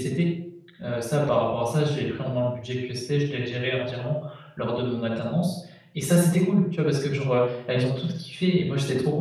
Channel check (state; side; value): identical; both; correlation 1.00